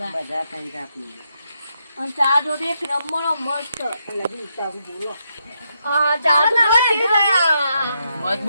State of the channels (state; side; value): inverted; both; correlation -0.80